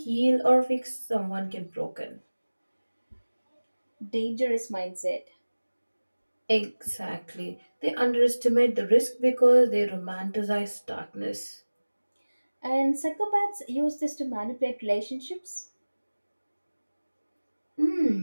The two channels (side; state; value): both; inverted; correlation -1.00